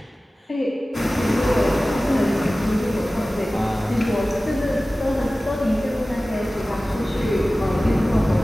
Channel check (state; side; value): normal; both; correlation 0.97